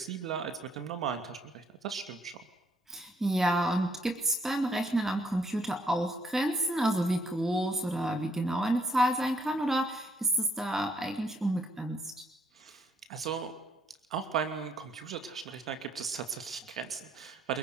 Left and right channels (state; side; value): normal; both; correlation 0.70